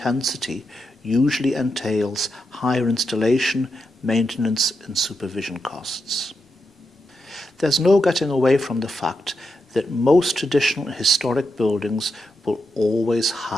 usually entails higher installation, maintenance and supervision costs. There's no getting away from the fact that most traditional and historic buildings will always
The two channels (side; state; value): both; normal; correlation 0.85